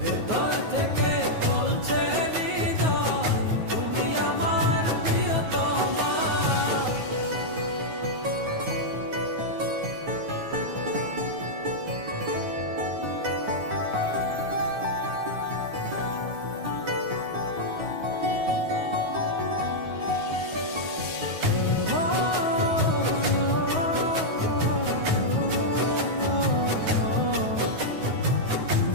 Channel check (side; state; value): left; late; 9.4 ms